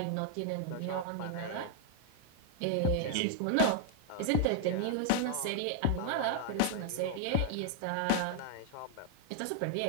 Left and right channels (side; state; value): both; different; correlation 0.00